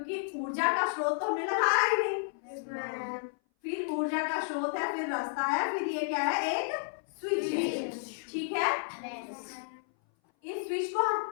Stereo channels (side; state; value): right; silent; 57 dB below the other